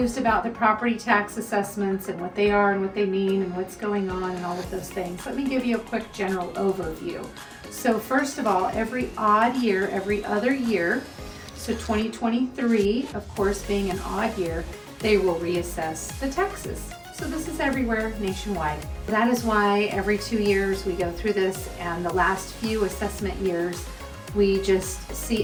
about the property tax assessments and what they are and what they mean and what's going on and all of those things, let me give you a quick general overview. So first of all, every odd year, every other year, so 2023, of course, being an odd year, they will reassess the taxes. So this is everywhere nationwide. That is why every 2 years we go through this, and the last few assessment years, we just see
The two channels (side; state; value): both; identical; correlation 1.00